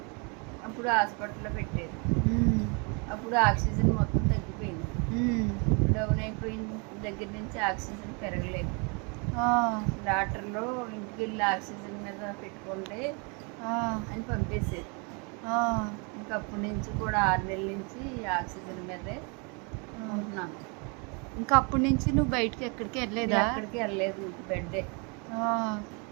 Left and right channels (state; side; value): quieter; left; 33.4 dB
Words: అప్పుడు హాస్పిటల్లో పెట్టారు. అప్పుడు ఆక్సిజన్ మొత్తం తగ్గిపోయింది. డౌన్ అయిపోయిన దగ్గర నుంచి ఆక్సిజన్ పెరగలేదు. డాక్టర్లు ఇంటికి వెళ్ళి ఆక్సిజన్ మీద పెట్టుకుంటే అని పంపేశారు. ఇంకప్పటి నుంచి కూడా 6 నెలల నుంచి ఆక్సిజన్ మీదే ఉంటున్నాను. ఇంకా అప్పటి నుంచి నువ్వు బయటకి ఎక్కడికి వెళ్ళలేదా? ఎక్కడికి వెళ్ళలేదు, ఇంక బెడ్డే.